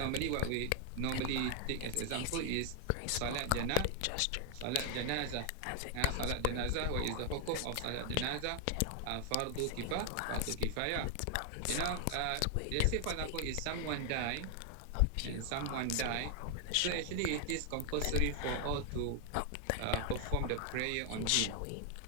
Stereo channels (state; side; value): different; both; correlation 0.00